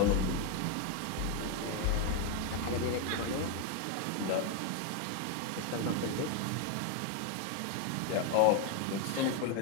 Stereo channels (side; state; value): both; different; correlation 0.01